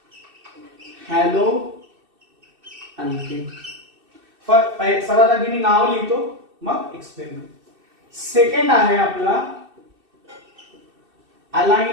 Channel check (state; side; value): late; left; 2.6 ms